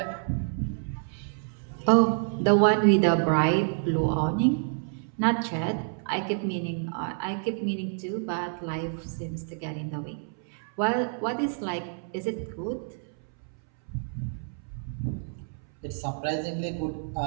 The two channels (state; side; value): silent; left; 59 dB below the other